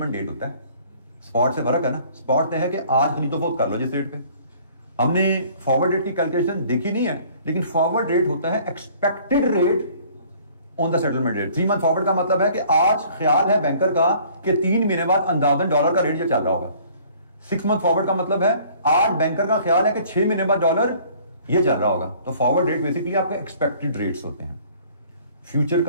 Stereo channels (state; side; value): inverted; both; correlation -0.55